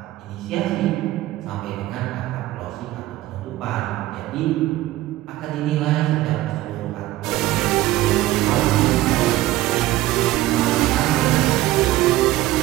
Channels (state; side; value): quieter; left; 15.9 dB